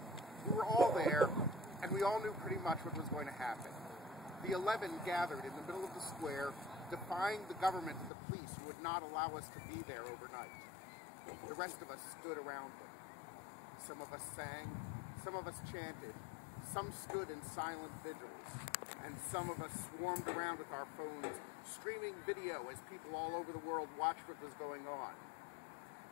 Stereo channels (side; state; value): right; drops out; at 8.1 s